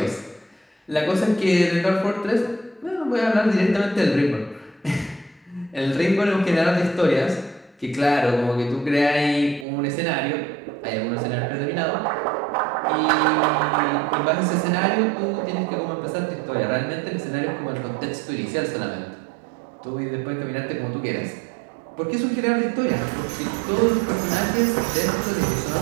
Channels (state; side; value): drops out; left; at 9.7 s